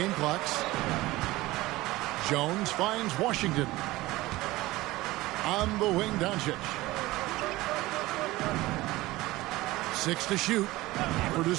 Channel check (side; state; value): left; quieter; 18.7 dB